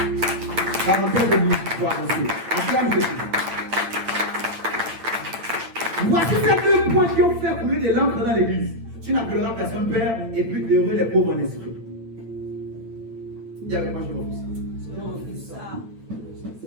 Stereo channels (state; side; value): late; left; 9.0 ms